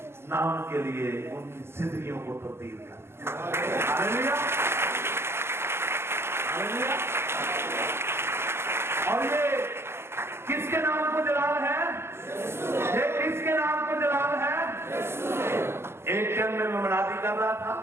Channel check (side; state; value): left; late; 0.12 ms